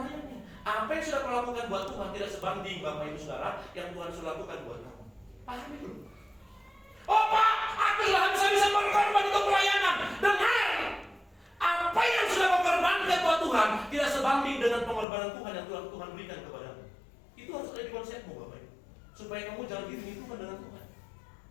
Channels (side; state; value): right; drops out; at 15.1 s